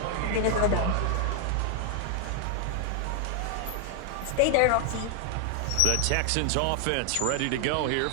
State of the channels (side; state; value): both; different; correlation 0.00